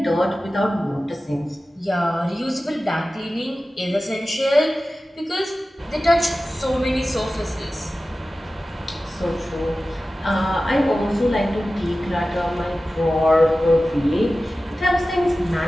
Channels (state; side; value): normal; both; correlation 0.95